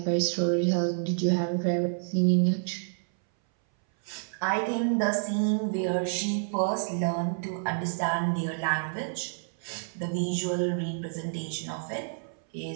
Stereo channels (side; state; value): left; silent; 59 dB below the other